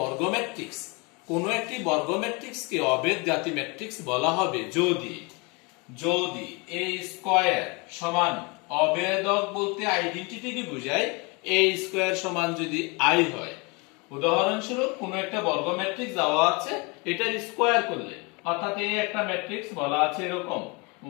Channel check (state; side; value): quieter; right; 29.2 dB